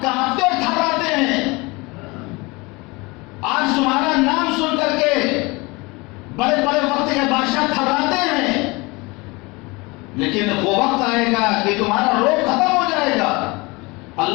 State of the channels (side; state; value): right; quieter; 24.9 dB